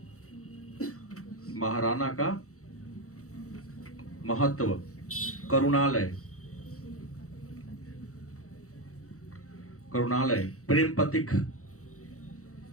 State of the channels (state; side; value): late; right; 0.65 ms